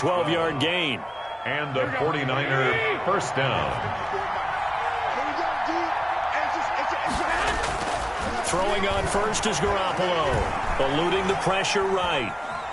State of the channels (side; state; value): both; identical; correlation 1.00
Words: gain. And a 49er 1st down. Throwing on 1st is Garoppolo. Eluding the pressure right.